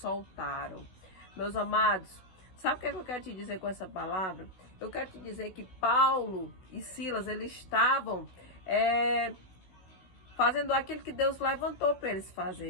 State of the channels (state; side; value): late; right; 16 ms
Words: Meus amados, sabe o que eu quero te dizer com essa palavra? Eu quero te dizer que Paulo e Silas, eles estavam fazendo aquilo que Deus levantou para eles